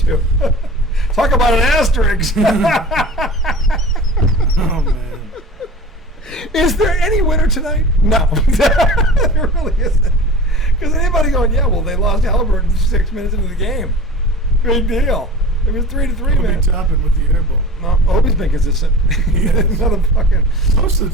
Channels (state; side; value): normal; both; correlation 0.39